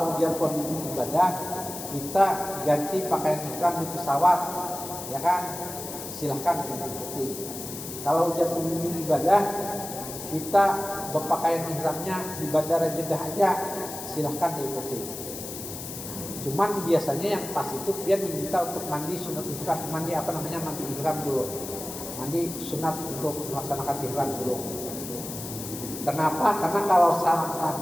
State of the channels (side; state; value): left; noise; hiss, 9 dB below the sound